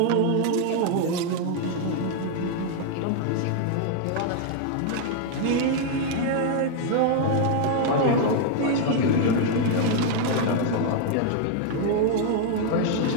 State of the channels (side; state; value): both; different; correlation 0.00